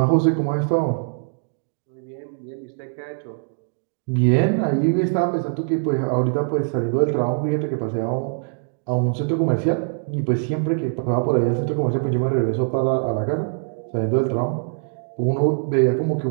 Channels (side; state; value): left; silent; digital silence